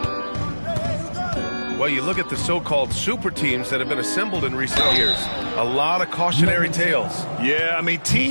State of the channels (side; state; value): both; inverted; correlation -1.00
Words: Well, you look at the so-called super teams that have been assembled in recent years. A lot of cautionary tales. Yeah, I mean,